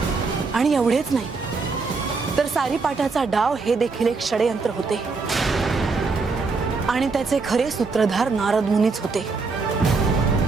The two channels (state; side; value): quieter; left; 4.3 dB